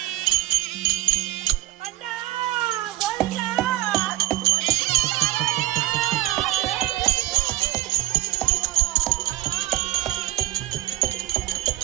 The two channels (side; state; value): left; quieter; 16.2 dB